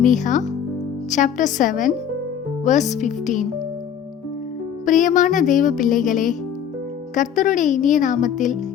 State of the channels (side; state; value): right; quieter; 8.5 dB